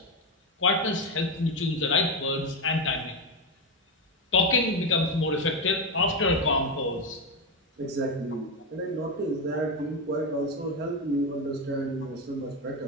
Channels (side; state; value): both; normal; correlation 0.12